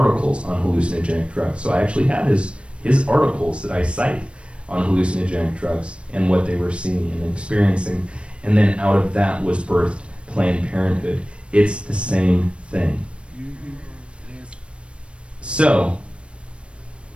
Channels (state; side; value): late; left; 0.059 ms